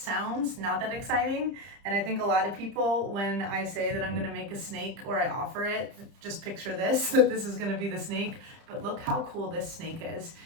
not that exciting, and I think a lot of people, when I say that I'm gonna make a snake or I offer it, just picture this, that this is gonna be the snake, but look how cool this snake is.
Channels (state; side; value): late; left; 30 ms